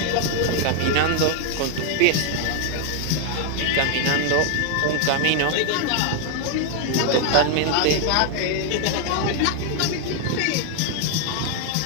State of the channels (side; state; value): both; different; correlation 0.00